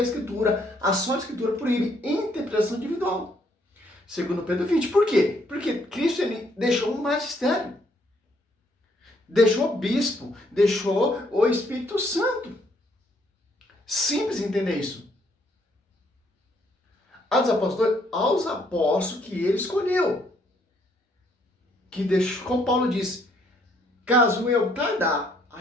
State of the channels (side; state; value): both; normal; correlation 0.69